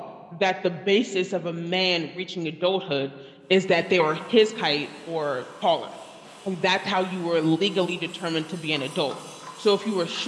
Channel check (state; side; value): identical; both; correlation 1.00